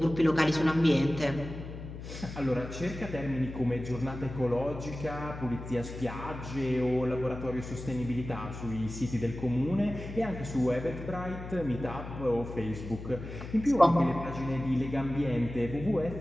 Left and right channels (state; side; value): noise; left; hum, 10 dB below the sound